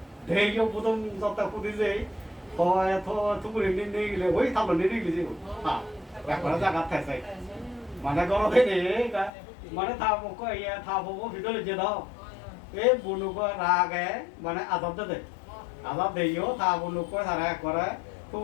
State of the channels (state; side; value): drops out; right; at 9.3 s